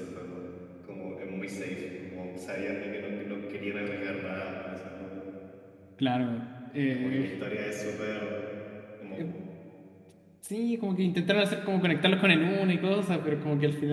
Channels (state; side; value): identical; both; correlation 1.00